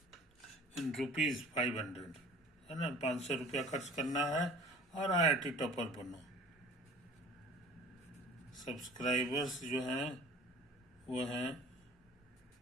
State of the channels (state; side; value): normal; both; correlation 0.46